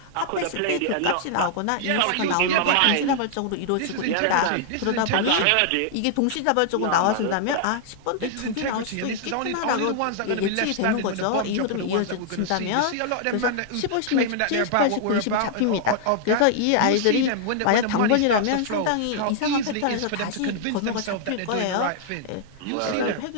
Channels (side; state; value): both; different; correlation -0.01